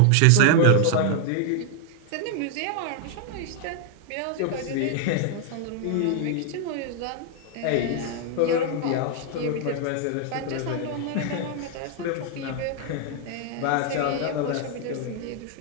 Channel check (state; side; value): different; both; correlation 0.00